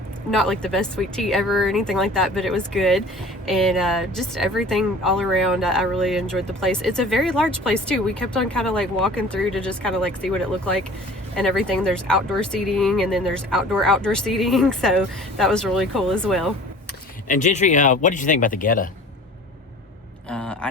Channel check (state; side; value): normal; both; correlation 0.45